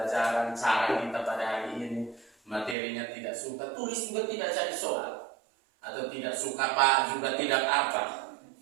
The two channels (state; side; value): drops out; left; at 2.8 s